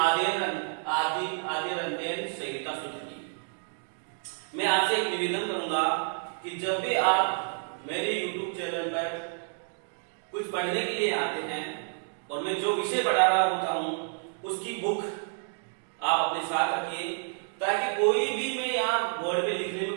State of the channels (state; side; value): silent; left; digital silence